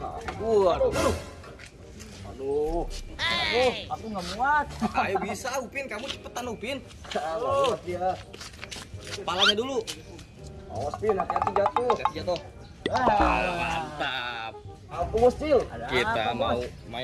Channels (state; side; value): identical; both; correlation 1.00